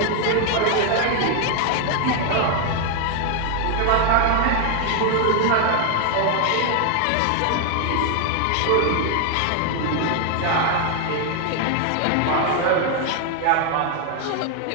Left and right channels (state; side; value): different; both; correlation 0.00